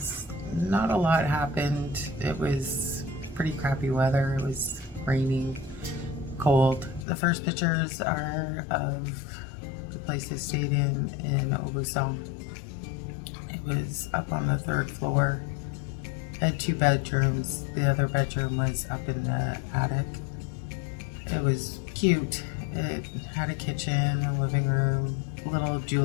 not a lot happened. It was pretty crappy weather. It was raining, cold. The first pictures are of the place I stayed in Aubusson. It was up on the third floor. It had 2 bedrooms. The other bedroom was up in the attic. It was cute. It had a kitchen, a living room, little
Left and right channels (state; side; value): drops out; right; at 7.1 s